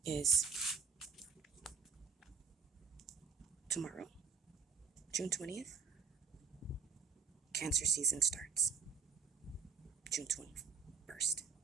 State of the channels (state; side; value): quieter; left; 5.6 dB